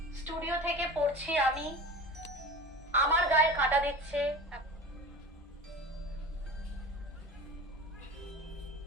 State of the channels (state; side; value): normal; both; correlation 0.34